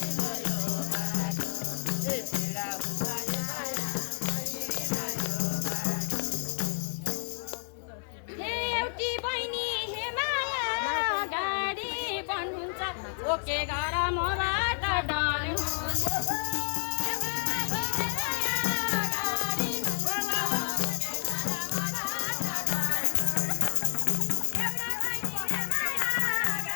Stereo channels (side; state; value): right; silent; 58 dB below the other